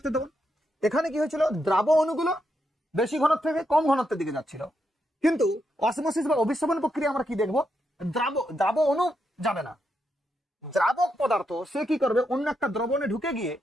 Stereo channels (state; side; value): normal; both; correlation 0.82